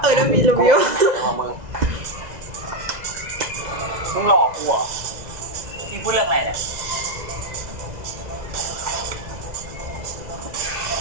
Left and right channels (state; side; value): late; left; 2.0 ms